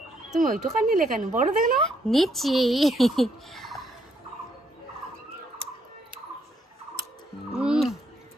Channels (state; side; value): normal; both; correlation 0.73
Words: তুমি ওইটুকা নিলে কেন? বড় দেখে না নিচ্ছি।